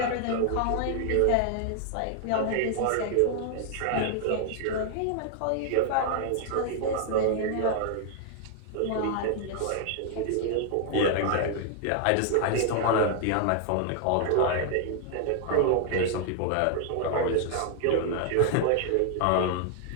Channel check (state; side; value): different; both; correlation 0.00